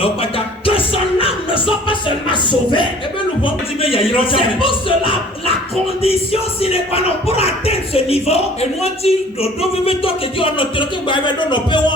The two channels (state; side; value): normal; both; correlation 0.50